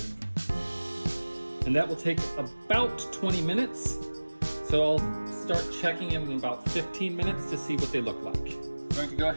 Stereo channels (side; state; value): both; inverted; correlation -1.00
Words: And that will take about 20 minutes. So I'll start checking in about 15 minutes to see what they look like. I'm going to go